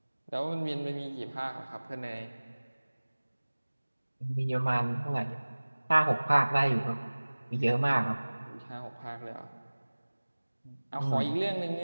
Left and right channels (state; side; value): inverted; both; correlation -1.00